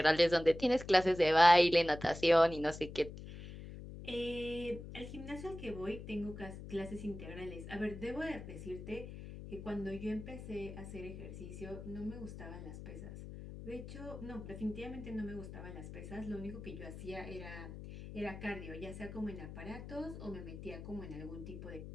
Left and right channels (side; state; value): left; noise; hum, 11 dB below the sound